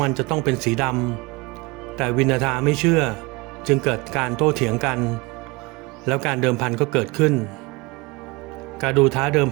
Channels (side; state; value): left; quieter; 25.3 dB